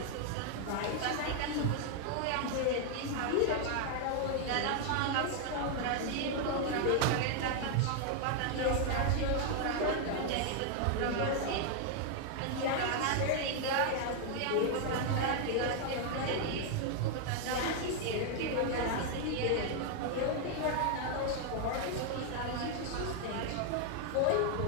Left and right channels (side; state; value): both; different; correlation 0.00